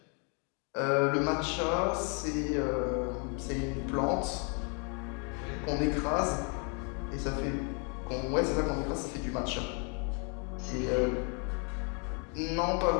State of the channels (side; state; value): right; quieter; 37.3 dB